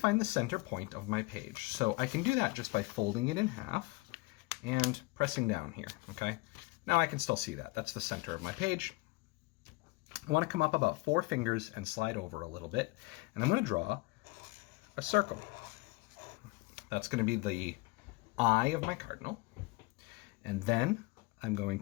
the center point of my page. So I can do that just by folding it in half and pressing down here, okay? Now I can still see that. That's the center of my page. I want to come up about 4 fingers and slide over a little bit, and I'm going to draw a circle. That's going to be the eye of my cardinal, and then I'm going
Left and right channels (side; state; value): right; quieter; 23.5 dB